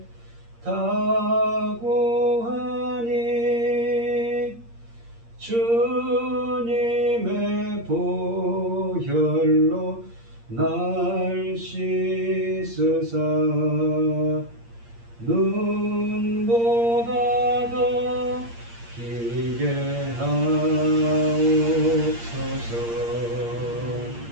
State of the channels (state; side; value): late; left; 8.6 ms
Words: 다 구하니 주님의 보혈로 날 씻으사 눈보다 더 기게 하옵소서.